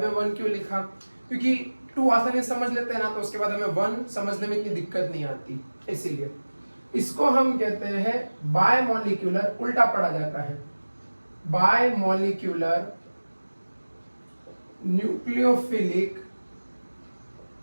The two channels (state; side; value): inverted; both; correlation -1.00